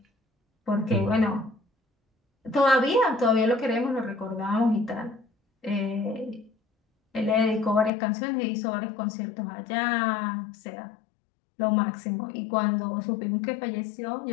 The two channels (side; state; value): right; drops out; at 7.9 s